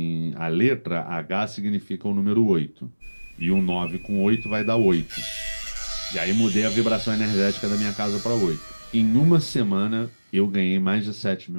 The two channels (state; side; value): inverted; both; correlation -1.00